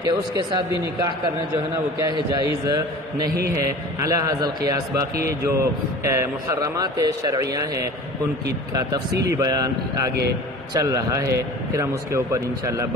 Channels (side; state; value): both; normal; correlation 0.40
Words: کہ اس کے ساتھ بھی نکاح کرنا جو ہے نا وہ کیا ہے؟ جائز نہیں ہے علی ھذا القیاس. باقی جو محرمات شرعیہ ہیں ان کی کا تفصیلی بیان آگے چل رہا ہے، پھر ہم اس کے اوپر انشاءاللہ